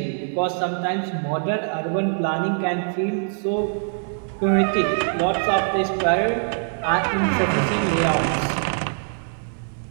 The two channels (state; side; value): silent; left; digital silence